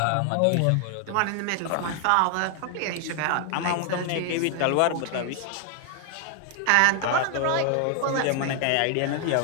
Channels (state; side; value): different; both; correlation 0.00